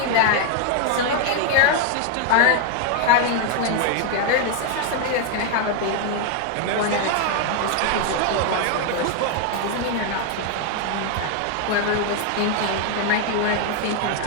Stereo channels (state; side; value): different; both; correlation 0.01